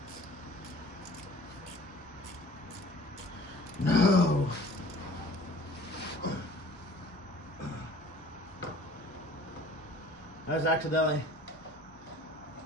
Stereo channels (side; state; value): both; normal; correlation 0.48